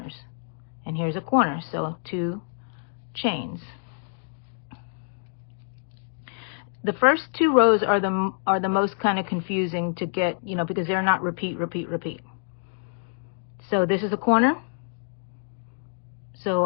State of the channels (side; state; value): right; silent; digital silence